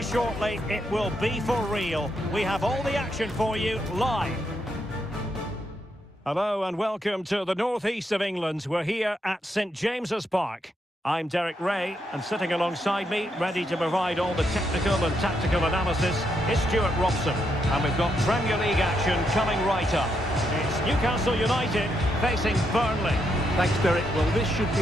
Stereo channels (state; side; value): normal; both; correlation 0.79